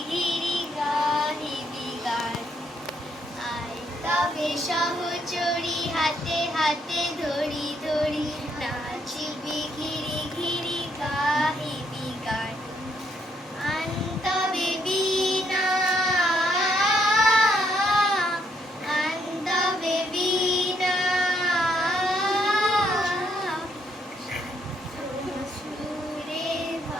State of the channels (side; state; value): both; normal; correlation 0.73